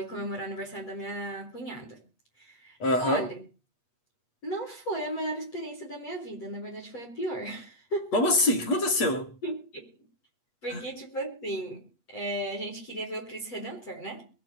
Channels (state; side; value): late; right; 8.3 ms